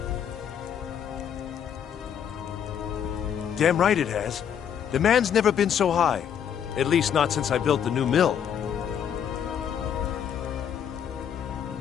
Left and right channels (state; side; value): quieter; right; 8.6 dB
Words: Damn right it has. Demand's never been so high. At least not since I built the new mill.